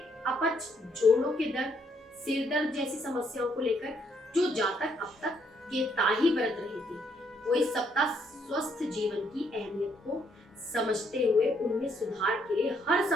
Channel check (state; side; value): normal; both; correlation 0.71